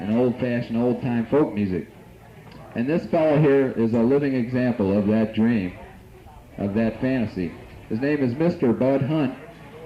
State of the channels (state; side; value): identical; both; correlation 1.00